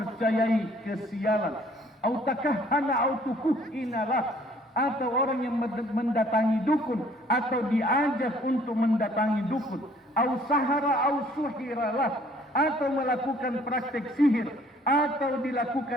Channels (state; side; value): normal; both; correlation 0.58